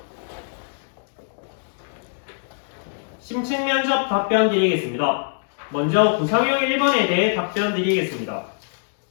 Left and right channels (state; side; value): silent; right; digital silence